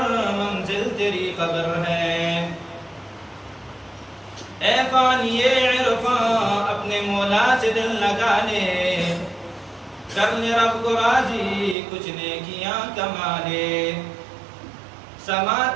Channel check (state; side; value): drops out; left; at 11.8 s